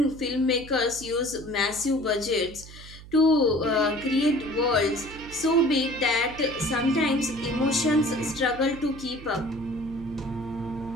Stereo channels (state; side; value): noise; right; hum, 17 dB below the sound